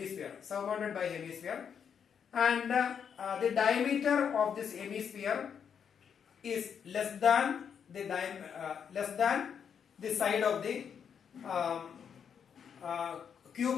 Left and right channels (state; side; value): quieter; right; 7.5 dB